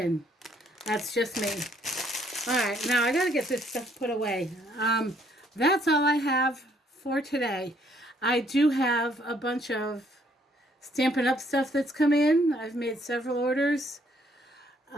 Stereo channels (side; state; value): both; normal; correlation 0.66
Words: That's just me. All right, now I got to get this stuff put away. That's all I have for today. I do have a bunch of Stampin' Up stuff that's come in. I've made several orders.